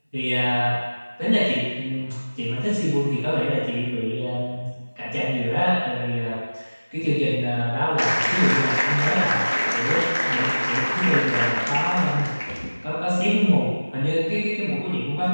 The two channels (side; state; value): both; inverted; correlation -1.00